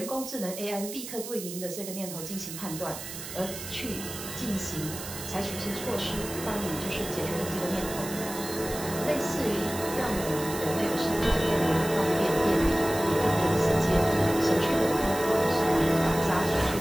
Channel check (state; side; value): noise; right; hiss, 10 dB below the sound